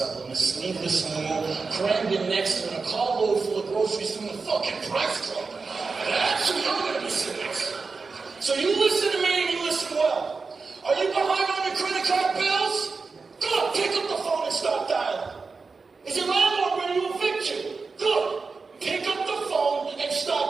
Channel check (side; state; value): left; quieter; 4.5 dB